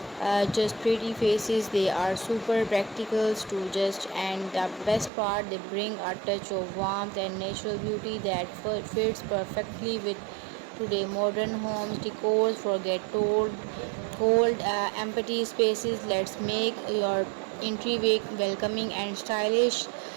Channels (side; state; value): left; drops out; at 5.1 s